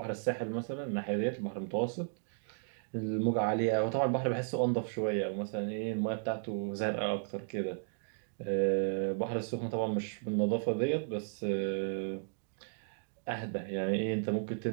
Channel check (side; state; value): left; silent; digital silence